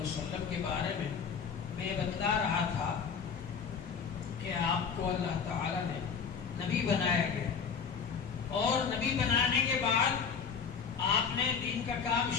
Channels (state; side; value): quieter; right; 6.4 dB